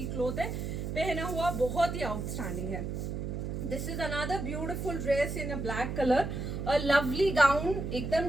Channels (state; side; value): noise; right; hum, 4 dB below the sound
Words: क्लॉथ है. पहना हुआ बहुत ही आउटस्टैंडिंग है. This is another beautiful dress in a black color. A lovely gown, एकदम